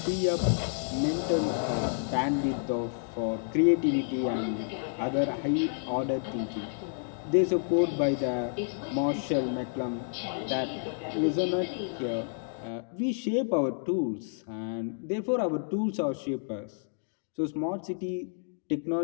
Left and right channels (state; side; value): silent; right; digital silence